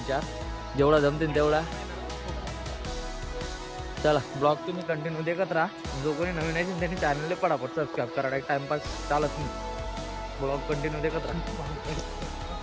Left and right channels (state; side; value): identical; both; correlation 1.00